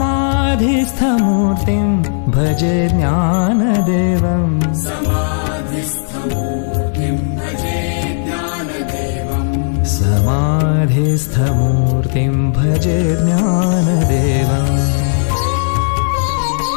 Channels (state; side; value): silent; right; digital silence